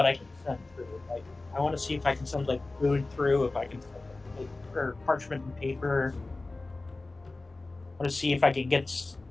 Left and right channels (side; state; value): right; quieter; 3.2 dB